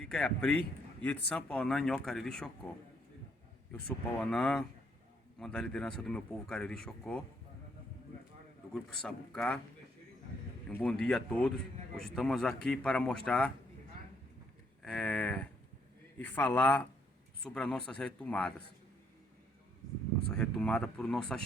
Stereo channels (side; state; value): both; normal; correlation 0.70